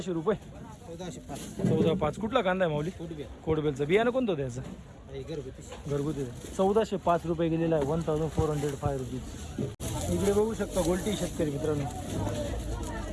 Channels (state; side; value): identical; both; correlation 1.00